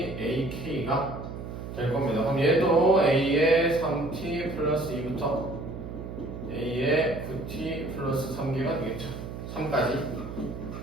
ak가 될 겁니다. 그럼 얘도 a의 3t 플러스 2부터 a의 9t 플러스 3개가 되겠죠. 3까지.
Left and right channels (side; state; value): right; noise; hum, 9 dB below the sound